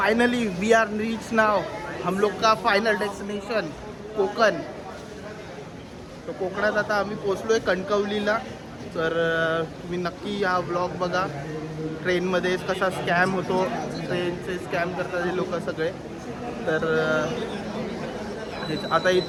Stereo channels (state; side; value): identical; both; correlation 1.00